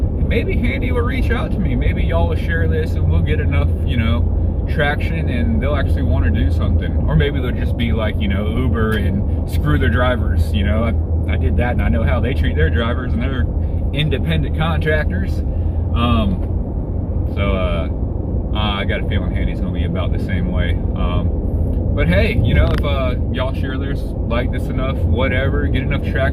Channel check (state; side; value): identical; both; correlation 1.00